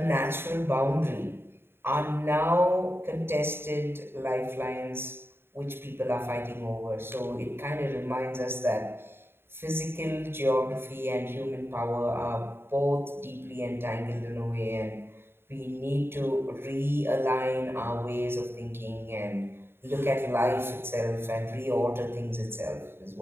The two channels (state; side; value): late; left; 0.11 ms